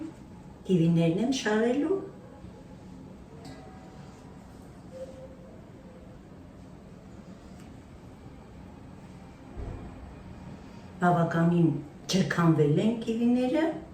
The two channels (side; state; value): both; identical; correlation 1.00